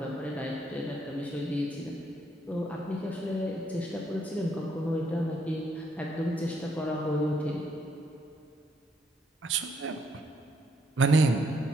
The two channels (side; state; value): both; normal; correlation 0.72